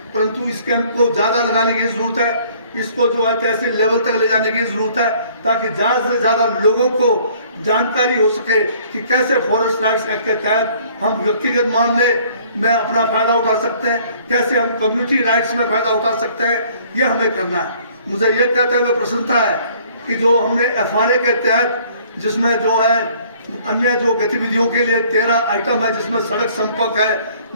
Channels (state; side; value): inverted; both; correlation -0.58